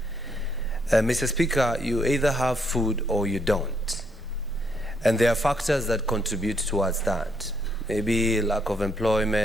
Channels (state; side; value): noise; right; rumble, 23 dB below the sound